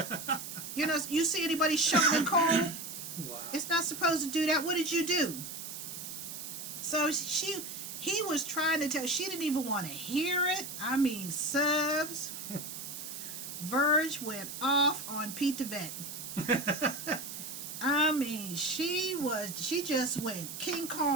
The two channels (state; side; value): noise; right; hiss, 8 dB below the sound